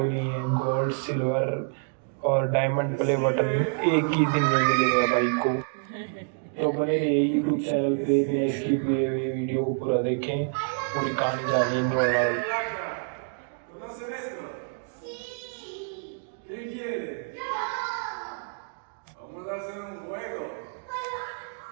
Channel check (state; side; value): silent; left; 60 dB below the other